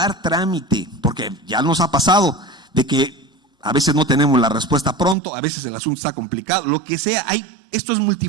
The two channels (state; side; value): drops out; left; at 5.2 s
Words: trámite, porque ya nos ha pasado de que a veces no tenemos la respuesta pronto, a veces el asunto está complicado, lo que sea, esto es